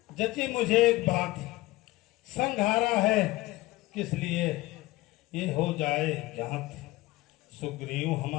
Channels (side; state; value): right; quieter; 19.0 dB